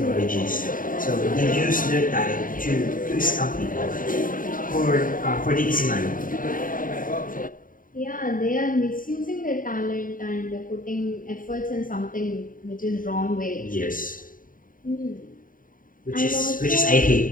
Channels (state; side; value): late; right; 0.40 ms